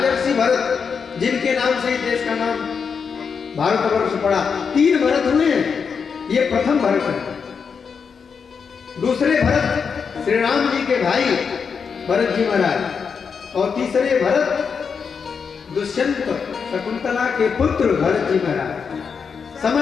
भरत, जिनके नाम से देश का नाम भारतवर्ष पड़ा। 3 भरत हुए हैं, ये प्रथम भरत है। दूसरे भरत श्री राम जी के भाई भरत जी महाराज, और तीसरे भरत दुष्यंत शकुंतला के पुत्र भरत जी महाराज।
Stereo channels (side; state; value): right; quieter; 6.1 dB